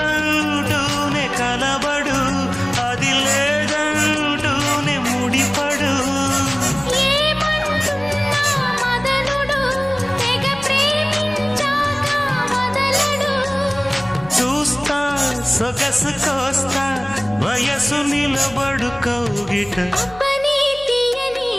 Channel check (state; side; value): noise; left; hum, 20 dB below the sound